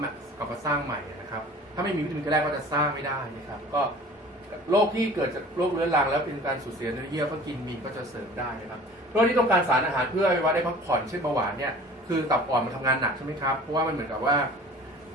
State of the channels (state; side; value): normal; both; correlation 0.44